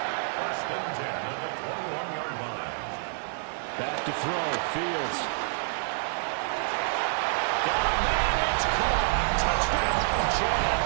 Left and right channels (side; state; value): left; silent; digital silence